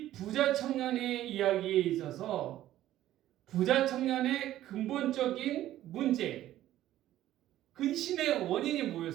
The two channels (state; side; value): quieter; left; 13.5 dB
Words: 부자 청년의 이야기에 있어서 부자 청년의 근본적인 문제, 근심의 원인이